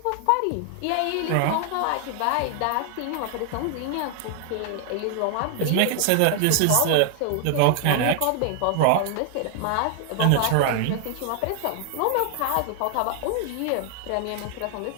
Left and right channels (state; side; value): different; both; correlation 0.00